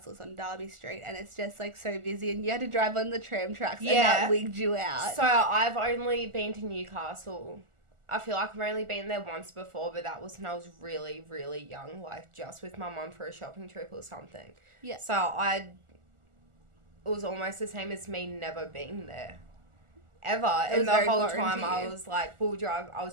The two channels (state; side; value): late; left; 1.4 ms